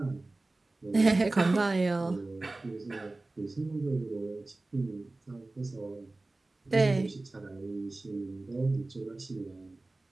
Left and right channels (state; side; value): quieter; left; 3.0 dB